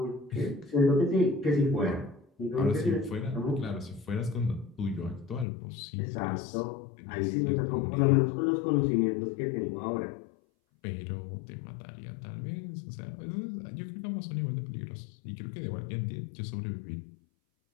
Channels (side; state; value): right; drops out; at 5.5 s